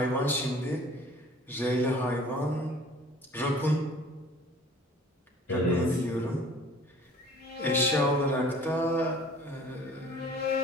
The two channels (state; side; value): normal; both; correlation 0.49